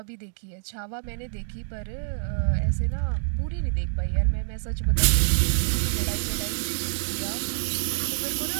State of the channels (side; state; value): left; silent; digital silence